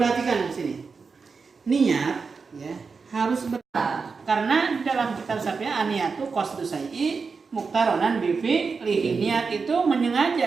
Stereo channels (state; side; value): quieter; left; 4.9 dB